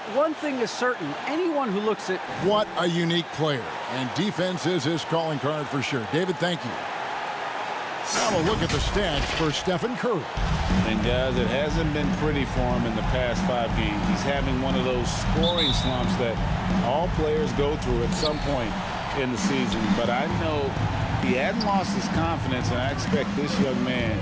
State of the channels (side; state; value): both; identical; correlation 1.00